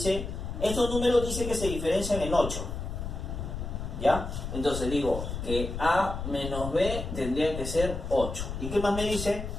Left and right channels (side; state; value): left; noise; rumble, 6 dB below the sound